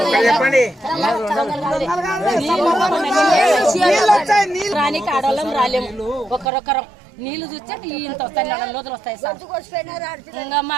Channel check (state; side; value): drops out; left; at 6.5 s